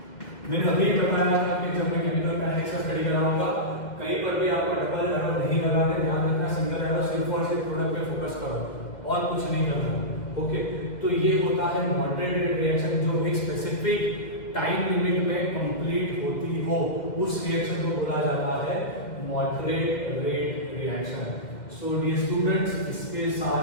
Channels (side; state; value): right; late; 2.1 ms